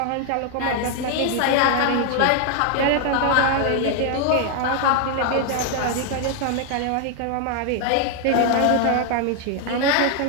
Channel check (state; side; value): different; both; correlation 0.00